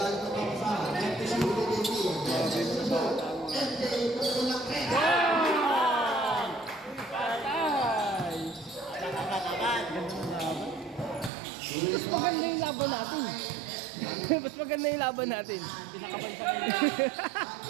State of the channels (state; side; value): drops out; left; at 11.3 s